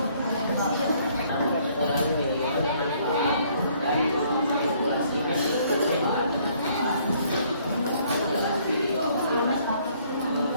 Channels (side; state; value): both; inverted; correlation -0.63